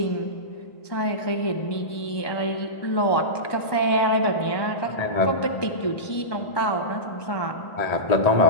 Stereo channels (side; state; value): right; late; 1.2 ms